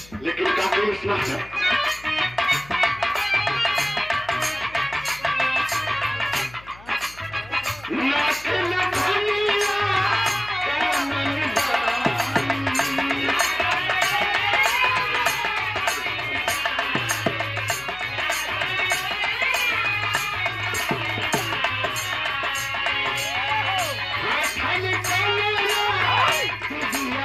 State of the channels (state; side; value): noise; left; hum, 22 dB below the sound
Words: लेकिन काफी इतना है।